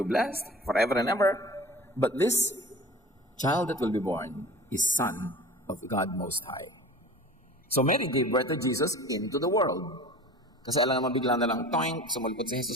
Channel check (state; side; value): normal; both; correlation 0.39